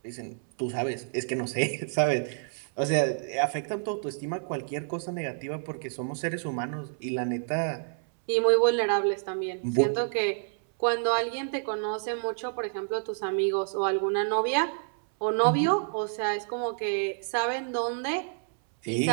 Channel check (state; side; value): silent; left; 59 dB below the other